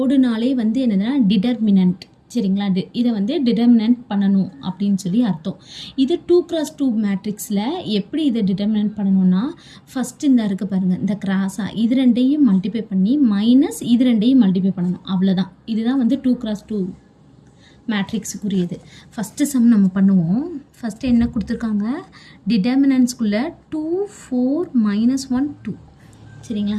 வந்து என்னதுன்னா டிடர்மினன்ட். சரிங்களா? இதை வந்து டிடர்மினன்ட் பண்ணணும் அப்படின்னு சொல்லி அர்த்தம். இது 2x2 மேட்ரிக்ஸில் எப்படி இதை டிடர்மினன்ட் பண்ணணும்னா, ஃபஸ்ட்டு இந்த இருக்குது பாருங்கள், இந்த கிராஸாக இது ரெண்டையும் மல்டிப்ளை பண்ணி மைனஸ் இது ரெண்டையும் மல்டிப்ளை பண்ணணும். அவ்வளோதான். இதுதான் வந்து 2x2 மேட்ரிக்ஸுக்குரியது. ஃபஸ்ட்டு சம் நம்ம பண்ணுவோம். ஃபஸ்ட்டு என்ன கொடுத்துருக்காங்க, டிடர்மினன்ட்ஸ்குள்ளே 2 4 -1 2. சரிங்களா?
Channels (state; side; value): identical; both; correlation 1.00